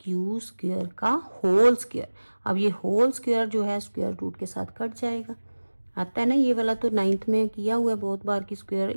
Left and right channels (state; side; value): inverted; both; correlation -1.00